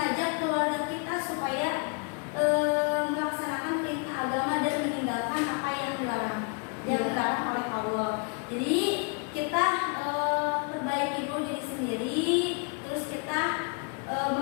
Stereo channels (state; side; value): quieter; right; 36.8 dB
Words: keluarga kita supaya melaksanakan perintah agama dan meninggalkan apa yang dilarang oleh Allah. Jadi kita perbaiki dulu diri sendiri, terus kita